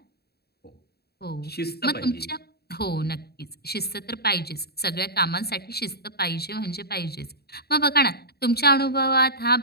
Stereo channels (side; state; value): right; late; 0.46 ms